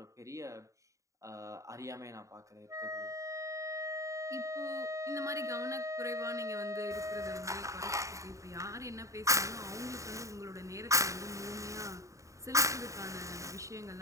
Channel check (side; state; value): left; late; 0.15 ms